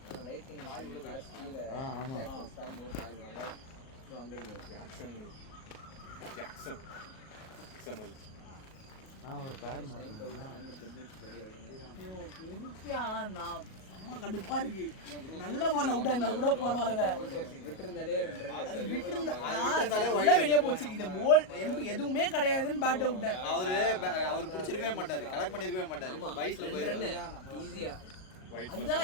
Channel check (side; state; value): right; late; 38 ms